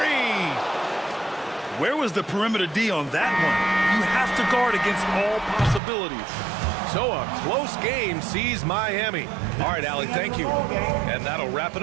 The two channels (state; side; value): drops out; left; at 5.8 s